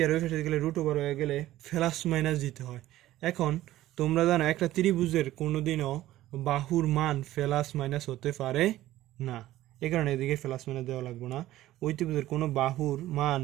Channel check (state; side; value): quieter; left; 14.9 dB